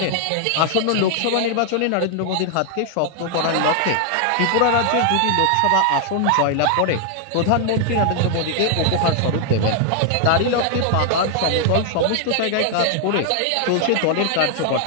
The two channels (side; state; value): both; different; correlation 0.00